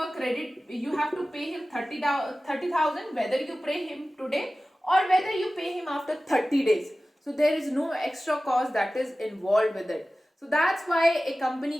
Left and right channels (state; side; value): normal; both; correlation 0.96